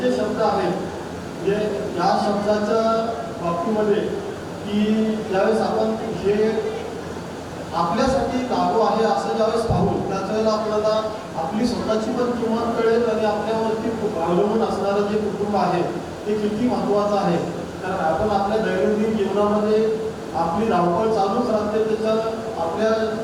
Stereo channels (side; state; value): both; identical; correlation 1.00